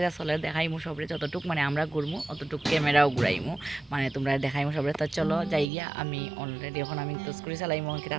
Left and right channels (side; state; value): left; drops out; at 5.7 s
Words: চলে দেখাইমু সবরে যতটুক মানে আমরা ঘুরমু অতটুক ক্যামেরাও ঘুরাইমু মানে তোমরা দেখাইমু সবরে তো চলো যাই গিয়া আমি অলরেডি এখন আমি তো করে চালাইমু কিতা